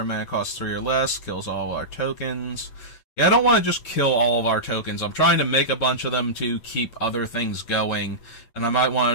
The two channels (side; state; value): right; late; 8.7 ms